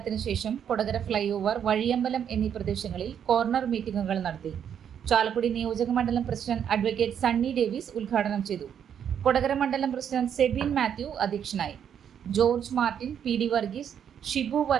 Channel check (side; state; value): left; quieter; 8.6 dB